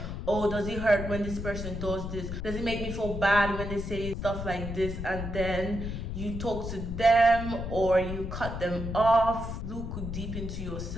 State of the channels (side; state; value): left; noise; rumble, 5 dB below the sound